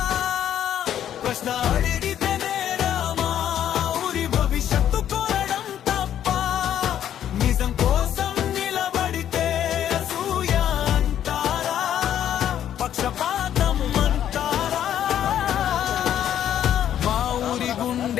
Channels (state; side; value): quieter; right; 10.4 dB